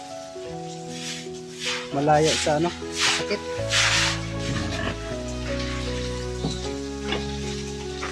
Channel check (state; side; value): identical; both; correlation 1.00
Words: malayo sa sakit.